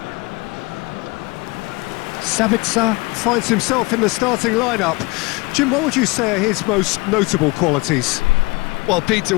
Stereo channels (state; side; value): quieter; right; 24.8 dB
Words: Sabitzer finds himself in the starting lineup. Jim, what would you say are his most notable qualities? Well, Peter,